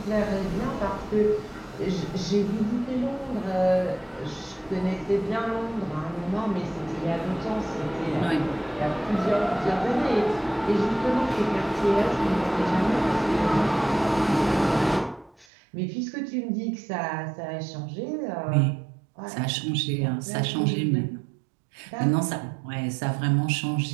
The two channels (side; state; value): left; drops out; at 15.5 s